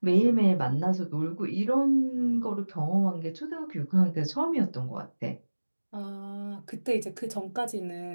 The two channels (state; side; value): inverted; both; correlation -1.00